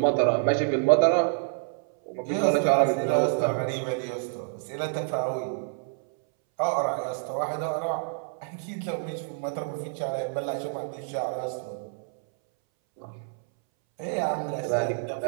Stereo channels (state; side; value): silent; left; 60 dB below the other